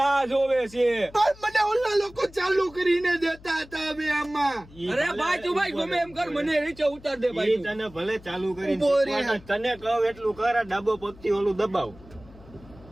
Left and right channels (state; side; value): noise; left; hum, 22 dB below the sound